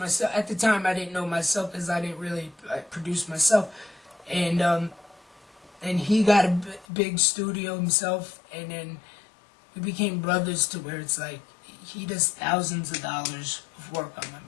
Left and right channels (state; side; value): drops out; right; at 6.9 s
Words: at the time I didn't know myself because I didn't really produce myself, and he got a big studio himself, and then we became brothers to where it's like he does thousands of dollars of work on my